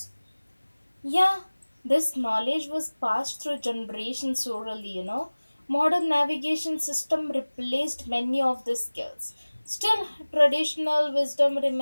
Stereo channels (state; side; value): inverted; both; correlation -1.00